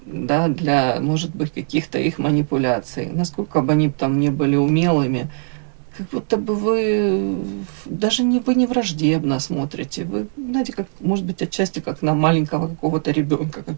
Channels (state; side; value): silent; left; digital silence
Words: для, может быть, каких-то их манипуляций. Насколько бы они там не были умелыми, как будто бы вы даже не, вы не враждебно смотрите. Вы, знаете, как, может быть, отчасти как на маленького какого-то ребенка,